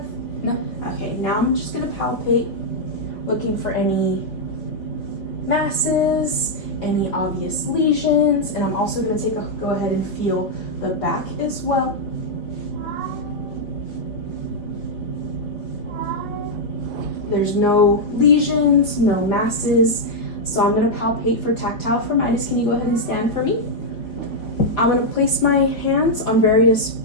No. Okay, now I'm just gonna palpate, looking for any masses, any obvious lesions, and I'm also gonna go ahead and feel the back as well. There's no lesions, no masses. So I'm going to palpate for tactile firmitis. Can you go ahead and stand for me? I'm going to place my hands on various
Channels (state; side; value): late; right; 4.2 ms